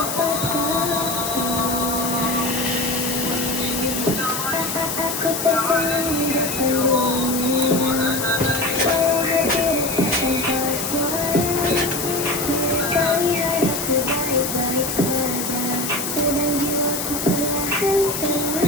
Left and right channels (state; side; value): noise; left; hiss, 4 dB below the sound